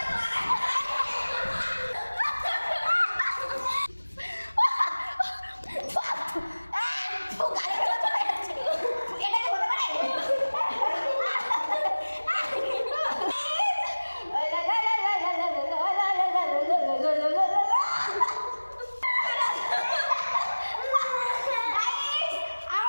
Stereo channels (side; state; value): both; inverted; correlation -1.00